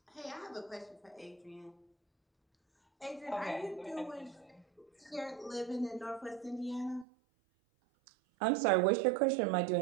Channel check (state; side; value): drops out; left; at 7.1 s